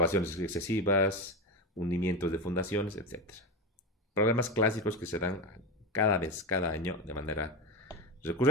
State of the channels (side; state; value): both; normal; correlation 0.17